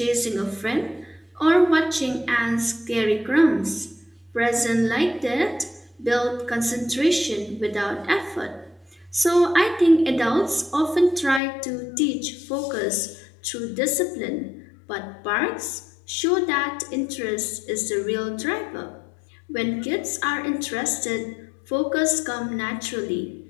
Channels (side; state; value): right; drops out; at 11.4 s